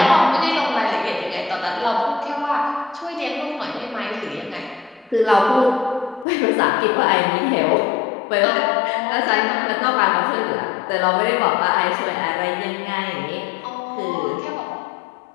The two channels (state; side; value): drops out; right; at 6.2 s